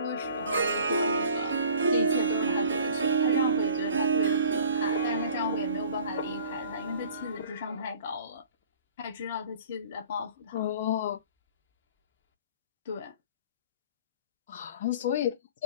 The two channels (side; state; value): both; inverted; correlation -0.48